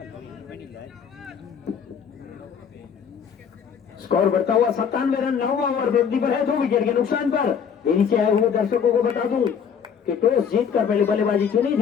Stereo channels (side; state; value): right; quieter; 7.3 dB